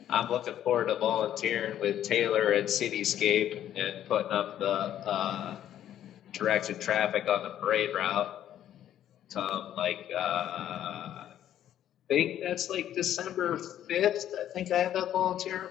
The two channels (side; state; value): right; quieter; 11.2 dB